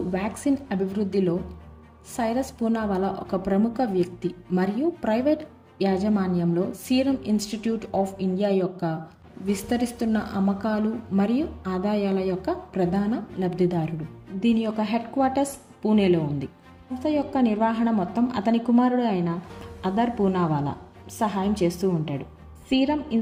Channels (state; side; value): identical; both; correlation 1.00